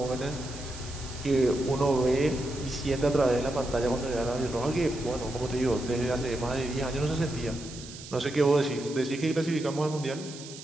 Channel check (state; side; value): noise; right; hiss, 14 dB below the sound